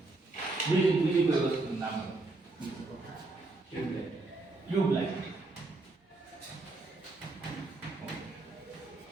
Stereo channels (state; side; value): quieter; left; 3.2 dB